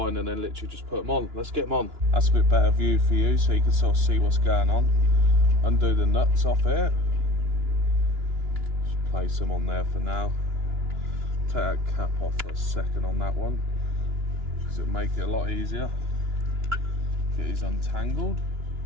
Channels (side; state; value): left; late; 2.9 ms